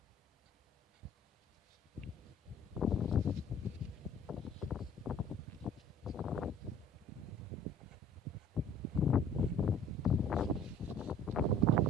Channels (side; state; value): both; normal; correlation 0.50